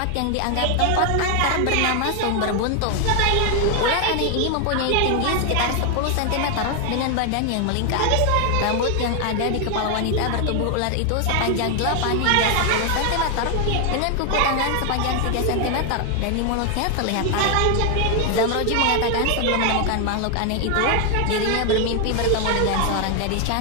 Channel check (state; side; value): different; both; correlation 0.00